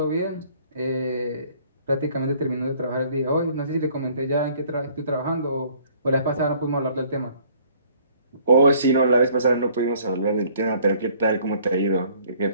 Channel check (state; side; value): inverted; both; correlation -0.58